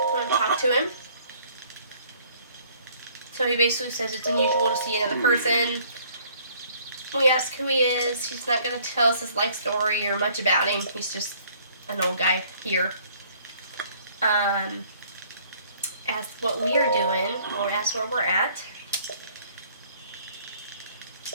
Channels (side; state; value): both; inverted; correlation -0.59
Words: I'm going to talk to him. So he basically says it's unusual to see another person. We ask who he is. He's not going to tell us his life story or much about him. He's just an old guy here. Ask what we are doing. Or ask where we're at.